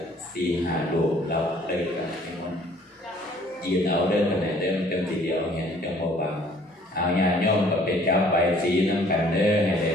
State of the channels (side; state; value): both; normal; correlation 0.57